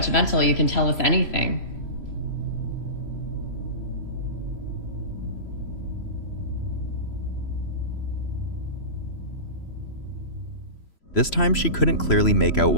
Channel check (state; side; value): late; right; 3.0 ms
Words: You can tell us anything. This time she couldn't clearly make out